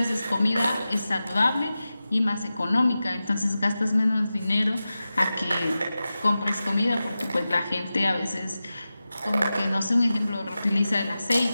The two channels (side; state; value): both; inverted; correlation -0.94